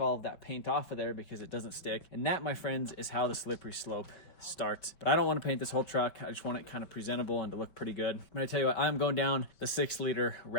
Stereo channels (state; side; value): late; right; 5.2 ms